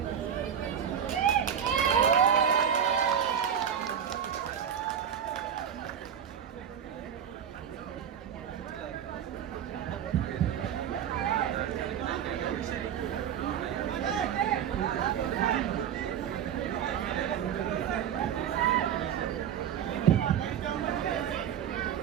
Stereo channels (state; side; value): quieter; left; 8.8 dB